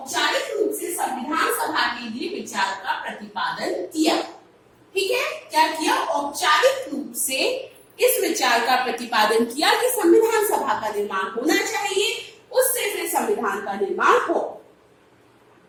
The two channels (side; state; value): both; identical; correlation 1.00